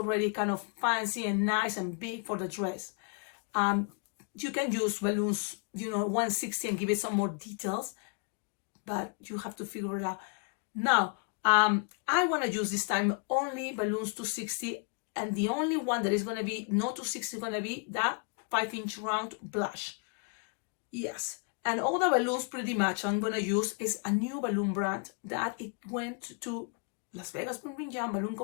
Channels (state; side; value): quieter; right; 37.0 dB